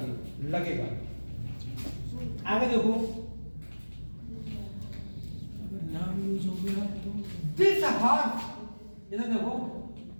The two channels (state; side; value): inverted; both; correlation -1.00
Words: लगेगा। आगे देखो, नाम यूज हो गया तो दिस हॉर्स, इधर देखो,